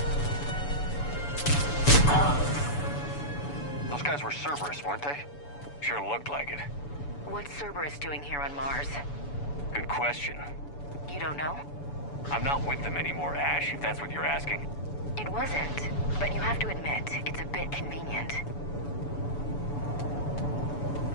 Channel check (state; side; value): late; right; 7.0 ms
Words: Those guys were Cerberus, weren't they? Sure looked like it. What's Cerberus doing here on Mars? Good question. You don't know? I'm not with them anymore, Ash, if that's what you're asking. It wasn't, but you have to admit, it's a bit convenient.